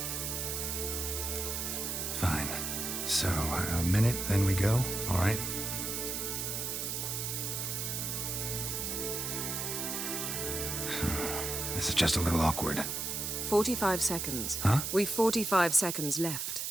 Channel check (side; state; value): right; noise; hiss, 2 dB below the sound